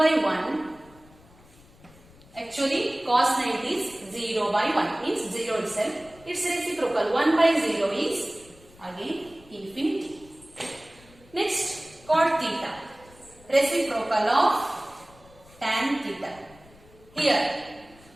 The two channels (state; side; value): noise; left; rumble, 25 dB below the sound